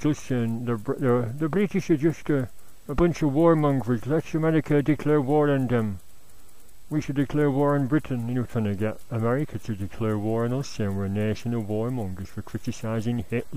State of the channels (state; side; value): identical; both; correlation 1.00